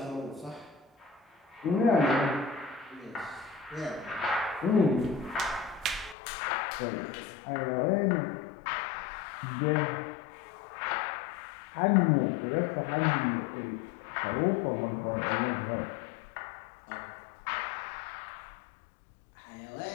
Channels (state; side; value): drops out; right; at 6.2 s